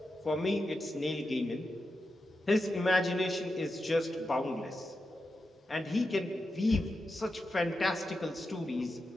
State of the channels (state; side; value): normal; both; correlation 0.89